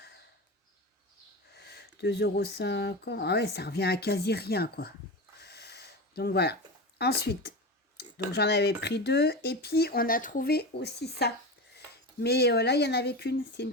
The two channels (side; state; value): both; normal; correlation 0.24